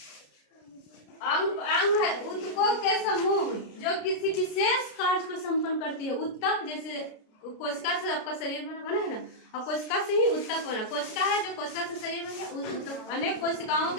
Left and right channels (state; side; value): late; right; 33 ms